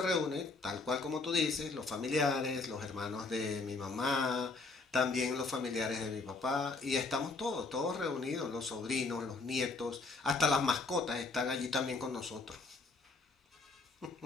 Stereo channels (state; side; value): quieter; right; 3.7 dB